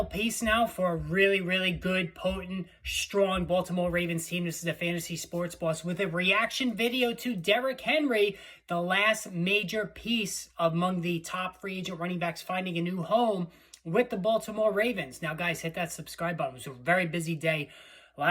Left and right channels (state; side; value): identical; both; correlation 1.00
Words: piece now for a really, really good, potent, strong Baltimore Ravens team? This is a Fantasy Sports Boss with a reaction video to Derrick Henry, the last major piece among the top free agent running backs finding a new home with the Baltimore Ravens. Now, guys, hit that subscribe button. It was a very busy day.